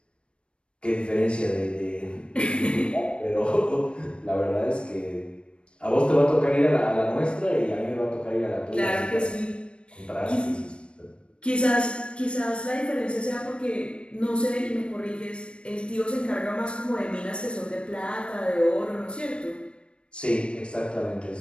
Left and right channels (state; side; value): late; right; 0.057 ms